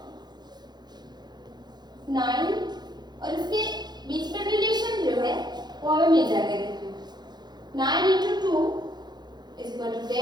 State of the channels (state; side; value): late; left; 0.20 ms